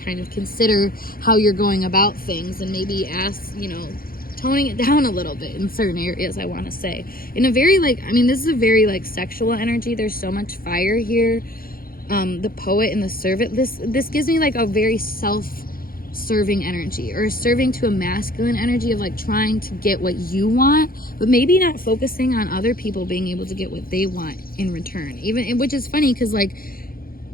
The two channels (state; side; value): late; right; 0.42 ms